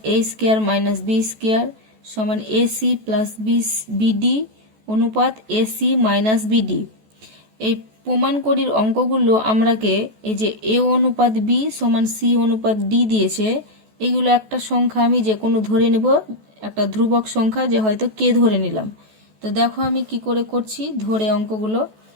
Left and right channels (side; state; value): left; late; 14 ms